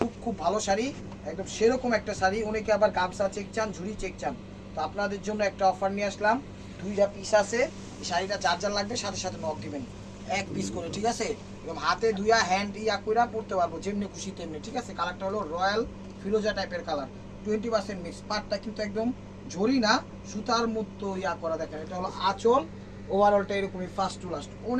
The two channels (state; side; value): identical; both; correlation 1.00